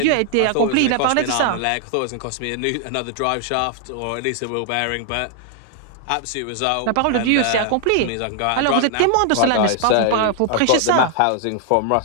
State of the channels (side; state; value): both; different; correlation 0.00